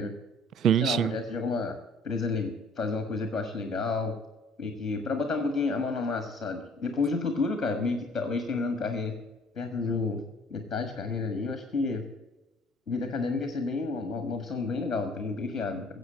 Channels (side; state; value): both; normal; correlation 0.54